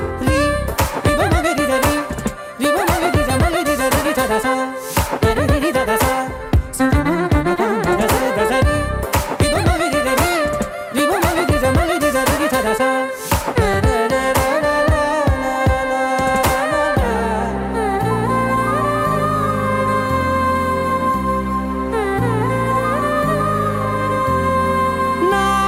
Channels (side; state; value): both; identical; correlation 1.00